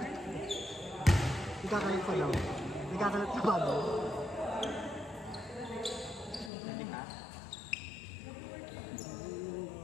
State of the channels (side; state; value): right; drops out; at 6.5 s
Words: Nagkakalat pa daw. Nagkakalat pa ba?